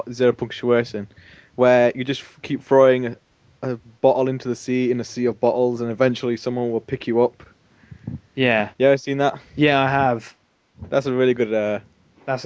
Zero Punctuation, where you just keep throwing a bottle into the sea in a sea of bottles, and eventually someone will pick you up. Yeah, You ever seen that? yeah, I have. That's a really good That's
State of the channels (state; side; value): identical; both; correlation 1.00